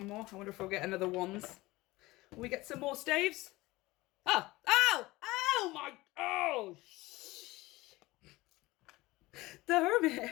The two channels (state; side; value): quieter; right; 19.9 dB